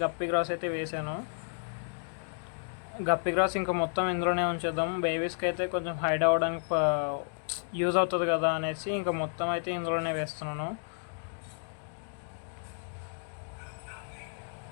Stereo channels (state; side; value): silent; right; digital silence